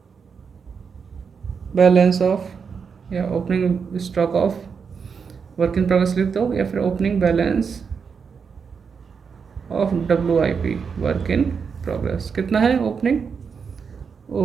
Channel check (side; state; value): left; quieter; 6.0 dB